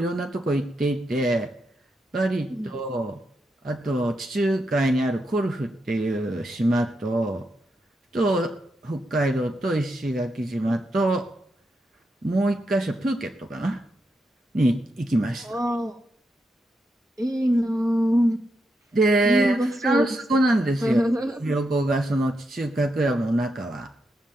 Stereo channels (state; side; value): normal; both; correlation 0.83